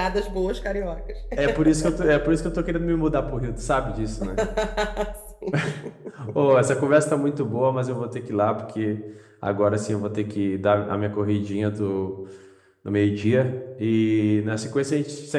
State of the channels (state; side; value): identical; both; correlation 1.00